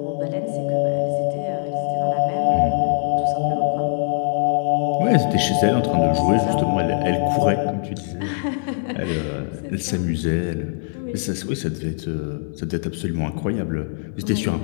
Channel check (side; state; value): right; silent; digital silence